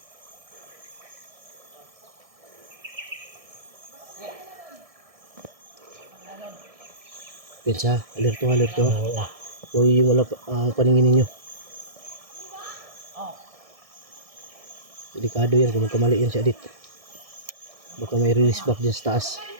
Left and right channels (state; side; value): late; left; 1.6 ms